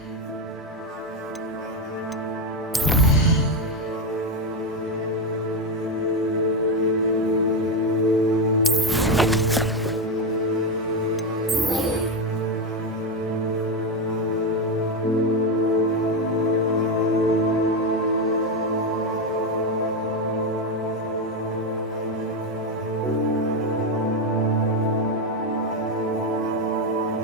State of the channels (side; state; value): both; normal; correlation 0.09